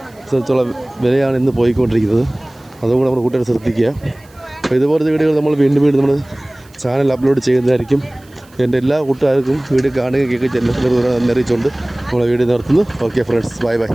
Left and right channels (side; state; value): right; noise; hiss, 29 dB below the sound